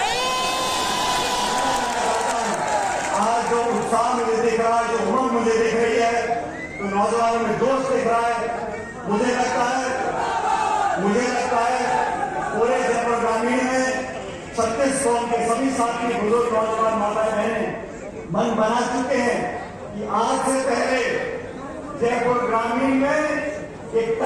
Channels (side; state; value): both; identical; correlation 1.00